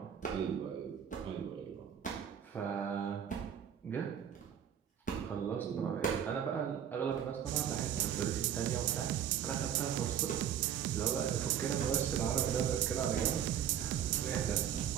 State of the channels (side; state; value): left; quieter; 9.2 dB